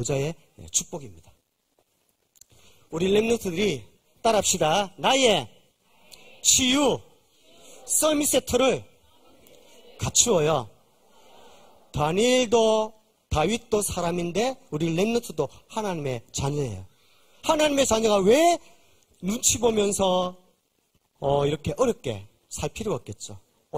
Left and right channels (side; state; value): both; identical; correlation 1.00